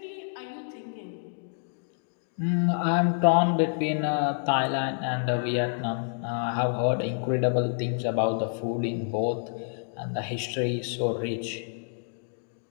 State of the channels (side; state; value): right; silent; digital silence